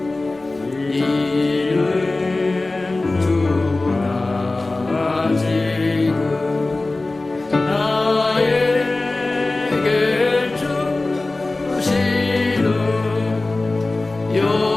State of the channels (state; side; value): quieter; right; 3.1 dB